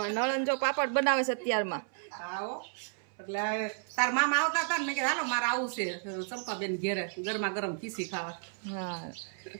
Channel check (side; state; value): left; silent; 56 dB below the other